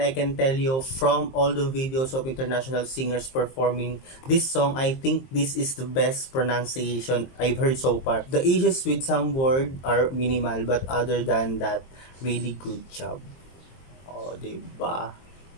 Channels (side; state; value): right; late; 23 ms